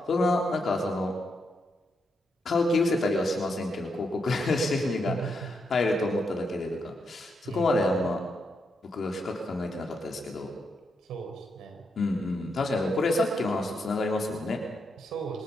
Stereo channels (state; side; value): normal; both; correlation 0.82